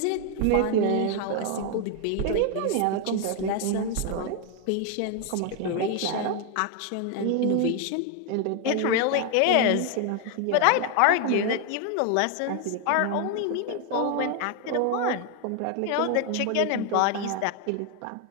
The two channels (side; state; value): both; different; correlation 0.01